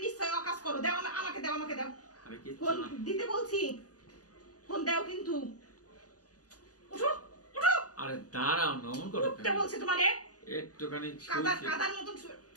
নিশ্চয় অকাজ করো। দাও আমাকে দাও, আমাকে দাও। আরে কিচ্ছু ফোন না। দিতে বলছি, ফোন দাও কিন্তু। উঠো উঠো। আরে দাঁড়াও, নমন করো উঠতে বলছি তোমারে। একটুখানি কাদার শুয়েছি। কাদার মতন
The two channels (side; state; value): right; late; 0.67 ms